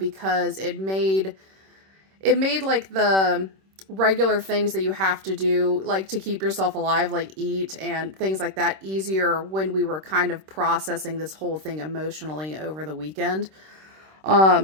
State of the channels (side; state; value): left; late; 26 ms